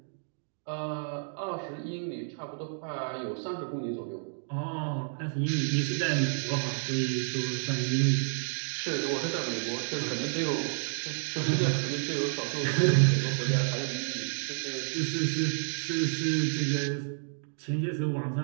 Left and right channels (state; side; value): silent; left; digital silence